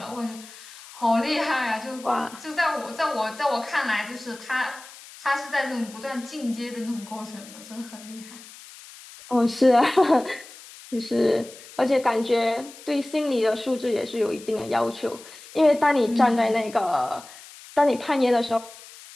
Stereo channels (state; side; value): noise; left; hiss, 18 dB below the sound